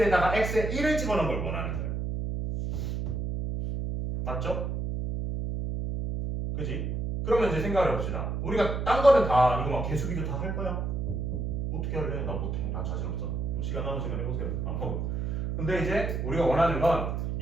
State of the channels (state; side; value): noise; right; hum, 2 dB below the sound